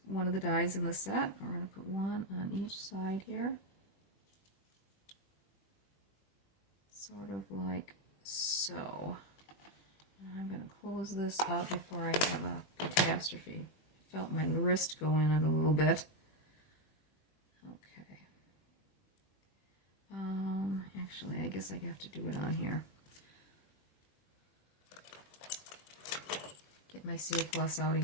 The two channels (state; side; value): late; right; 20 ms